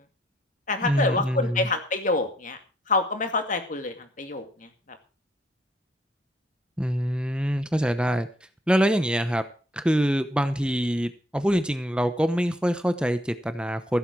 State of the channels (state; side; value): normal; both; correlation 0.68